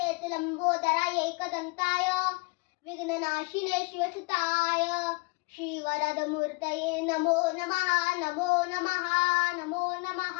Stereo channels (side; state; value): right; quieter; 27.5 dB